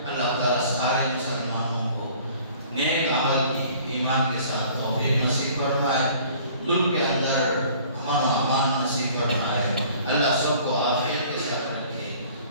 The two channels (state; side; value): inverted; both; correlation -0.52